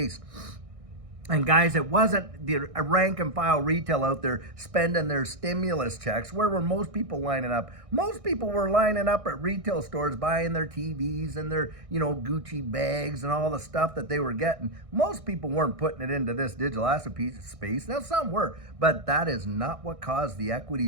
And guys, it wasn't the rank and file retail out there spending their stimulus checks. Where were most people lining up? Most people were lining up at retail stores buying their TVs and their, Gucci bags and all the stuff that they were getting. Most people weren't putting it into this digital asset space. Now, some were, but that is not what caused the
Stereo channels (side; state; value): left; late; 1.6 ms